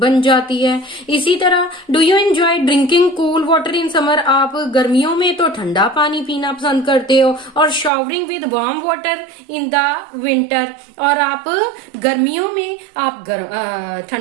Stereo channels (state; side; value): drops out; left; at 7.9 s